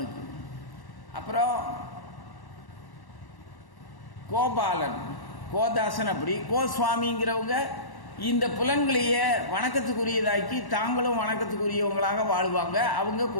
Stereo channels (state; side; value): late; right; 1.1 ms